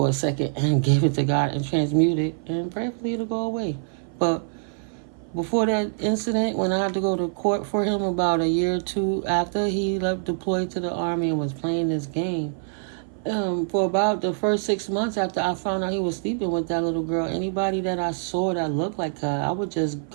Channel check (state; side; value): silent; left; 57 dB below the other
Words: a second and give it to God and transmute it, and prayerfully it'll go away. But before that incident, when I had to go to court for him about a year or two after he left deployed to the Army and was playing this game, for about the first 6 months after I found out he was sleeping with that little girl, anybody that I saw that looked like her, I would just